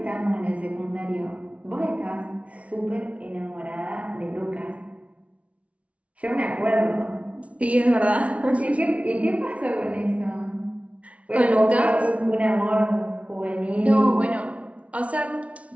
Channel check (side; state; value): left; late; 0.064 ms